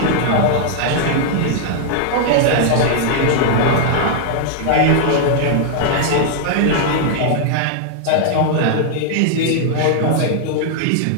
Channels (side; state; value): both; different; correlation -0.01